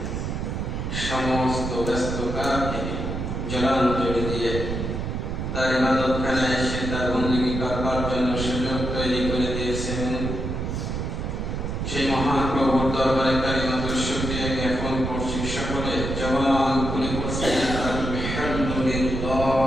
সমস্ত ব্যস্ততাকে জলাঞ্জলি দিয়ে তার ইবাদতখানায় এসে তার বন্দেগী করবার জন্য সুযোগ তৈরি করে দিয়েছেন। সেই মহান প্রভুর দরবারে কালিমাতুল শুকরিয়া জ্ঞাপন করছি। সকলে জবান খুলে পড়ছি আলহামদুলিল্লাহ।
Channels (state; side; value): noise; right; rumble, 3 dB below the sound